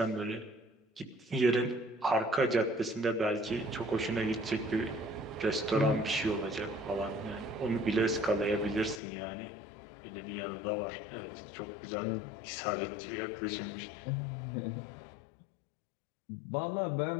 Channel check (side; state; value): right; drops out; at 9.0 s